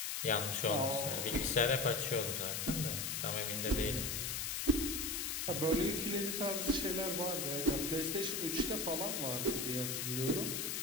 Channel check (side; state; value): left; noise; hiss, 1 dB below the sound